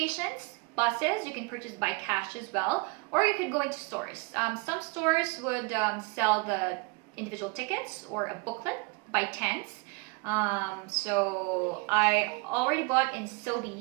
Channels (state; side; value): quieter; left; 28.8 dB